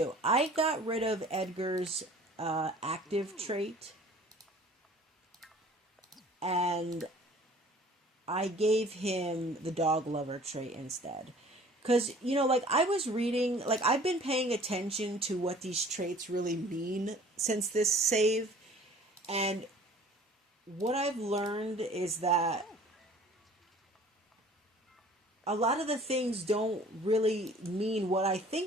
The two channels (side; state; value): both; normal; correlation 0.50